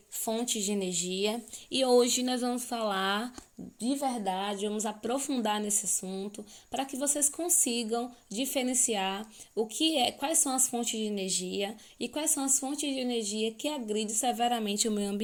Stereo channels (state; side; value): identical; both; correlation 1.00